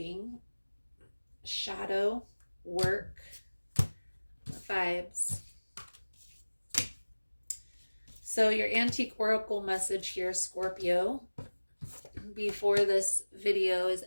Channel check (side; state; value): both; inverted; correlation -1.00